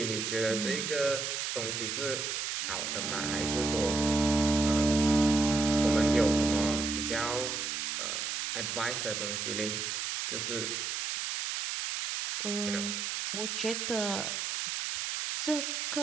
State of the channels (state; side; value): noise; right; hiss, 2 dB below the sound